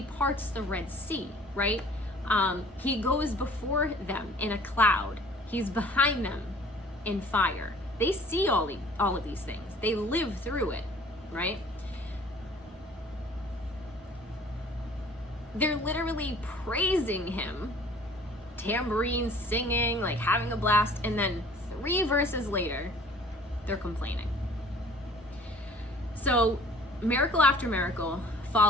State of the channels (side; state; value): both; normal; correlation 0.51